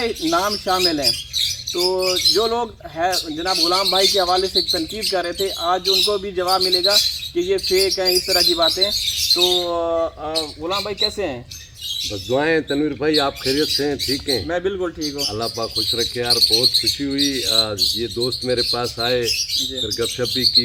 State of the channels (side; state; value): both; identical; correlation 1.00